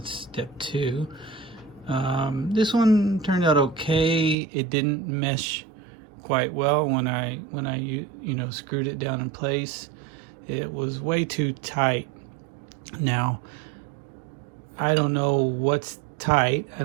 step two. This one turned out okay. It didn't mesh quite well when I screwed it down in place. It was way too tight. Now, I don't know what's tight. I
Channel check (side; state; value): left; drops out; at 4.4 s